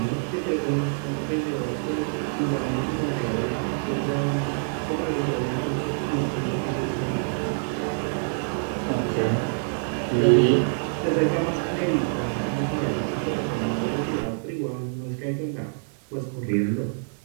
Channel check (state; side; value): silent; left; digital silence